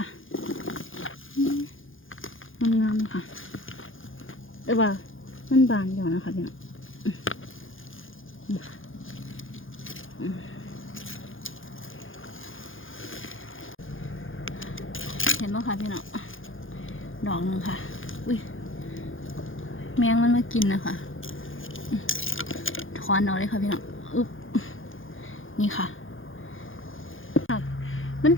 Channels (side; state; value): right; late; 0.58 ms